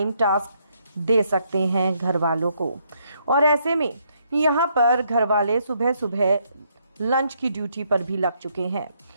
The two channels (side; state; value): both; inverted; correlation -0.73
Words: टास्क दे सकते हैं घर वालों को, और ऐसे में यहाँ पर घर वाले सुबह सुबह लंच की ड्यूटी पर भी लग चुके हैं।